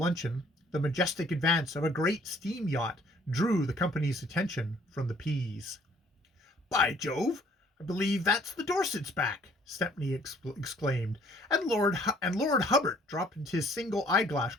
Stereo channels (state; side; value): normal; both; correlation 0.59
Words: the majestic advance of a great steam yacht drew the company's attention from the peas. By Jove! I believe that's the Dorsets back, Stepney exclaimed, and Lord Hubbard dropped into his single eyeglass,